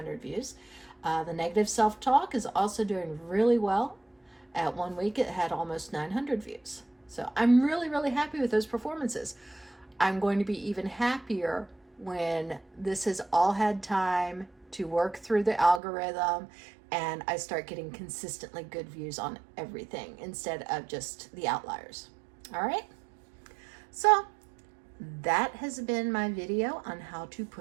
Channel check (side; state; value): left; drops out; at 15.8 s